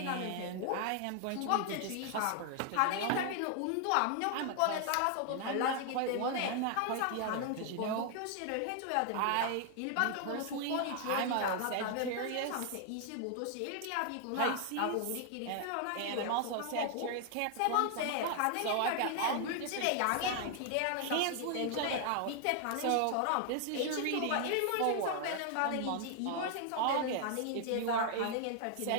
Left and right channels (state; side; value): different; both; correlation 0.00